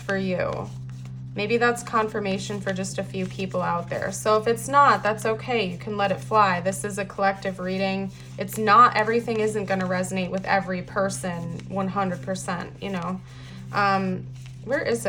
you. Maybe that's confirmation for just a few people out there. So if it's not, that's okay. You can let it fly. This is a collective reading. It's not, everything isn't going to resonate with every person 100%, you know. Where is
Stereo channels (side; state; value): both; identical; correlation 1.00